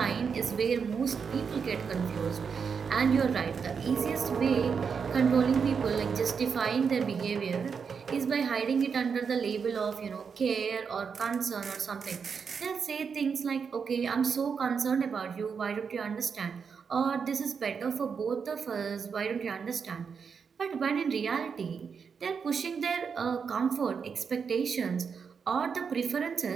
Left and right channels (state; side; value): quieter; left; 6.1 dB